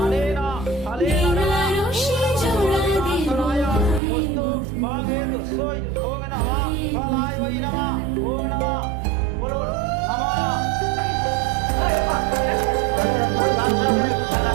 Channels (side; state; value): left; drops out; at 4.0 s